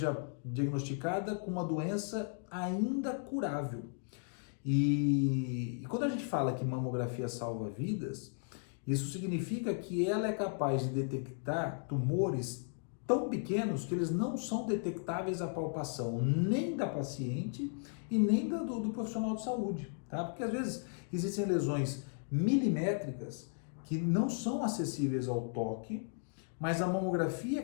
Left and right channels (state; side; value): silent; right; 54 dB below the other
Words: diagnosticada com uma doença ainda curável. E quando a gente fala que mamografia salva vidas, isso significa que ela é capaz de detectar tumores tão pequenos que eles não são detectáveis à palpação nem da paciente e nem do profissional de saúde, tá? Porque às vezes existem lesões milimétricas que não são acessíveis ao toque, mas a mamografia é